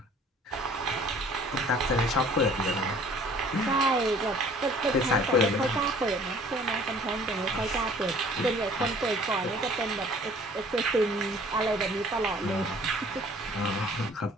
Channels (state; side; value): normal; both; correlation 0.52